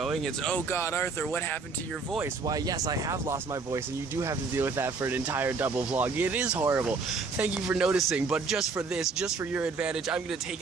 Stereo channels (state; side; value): quieter; left; 4.4 dB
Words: It's, oh god, Arthur, what happened to your voice? Why, yes, I have lost my voice, and you do have to deal with that for an entire double vlog. It is horrible. Thank you for noticing, but just for this, just for your advantage, I'm going to take